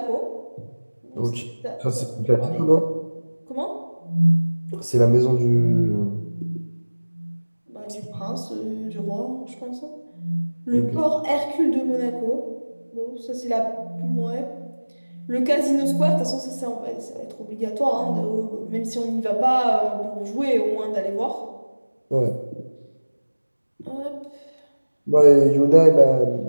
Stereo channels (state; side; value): inverted; both; correlation -1.00